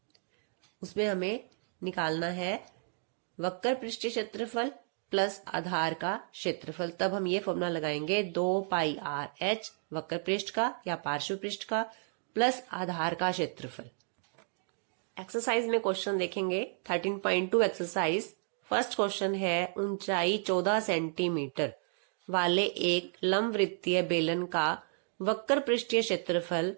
उसमें हमें निकालना है वक्र पृष्ठीय क्षेत्रफल प्लस आधार का क्षेत्रफल। तब हम ये फॉर्मूला लगाएंगे 2 पाई आर एच वक्र पृष्ठ का या पार्श्व पृष्ठ का प्लस आधार का क्षेत्रफल। एक्सरसाइज में क्वेश्चन देखेंगे 13.2 एक्सरसाइज। फर्स्ट क्वेश्चन है ऊंचाई 14 सेंटीमीटर वाले एक लंबवृत्तीय बेलन का वक्र पृष्ठीय क्षेत्रफल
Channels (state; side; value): silent; left; 56 dB below the other